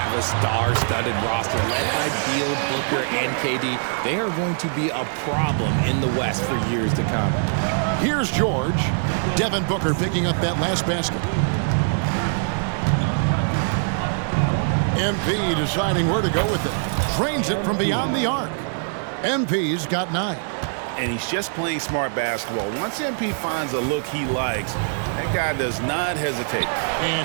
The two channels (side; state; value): left; silent; 59 dB below the other